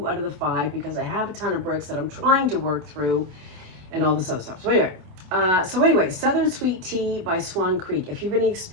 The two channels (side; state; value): left; late; 27 ms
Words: out of the 5 because I have a ton of bricks that I'm trying to work through and all this other stuff. So anyway, Southern Sweet Tea by Swan Creek. If you have any